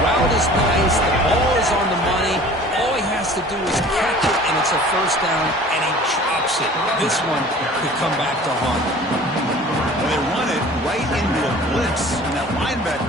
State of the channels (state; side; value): normal; both; correlation 0.46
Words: route is nice. The ball is on the money. All he has to do is catch it, and it's a 1st down, and he drops it. This one could come back to haunt him. They run it right into a blitz, and that